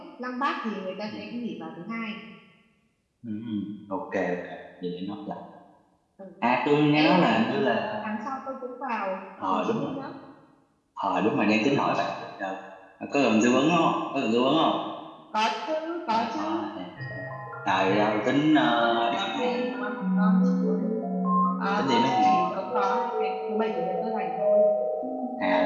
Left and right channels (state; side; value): identical; both; correlation 1.00